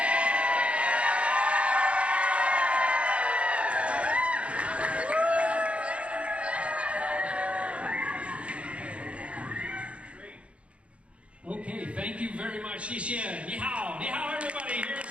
Okay, thank you very much. 谢谢，你好，你好 everybody. Here's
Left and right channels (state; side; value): late; left; 0.061 ms